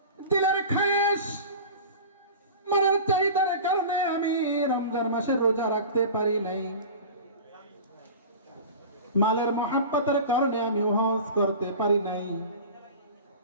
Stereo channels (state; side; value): inverted; both; correlation -0.35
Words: দিলের খায়েশ, মনের চাহিদার কারণে আমি রমজান মাসে রোজা রাখতে পারি নাই, মালের মহাব্বতের কারণে আমি হজ করতে পারি নাই,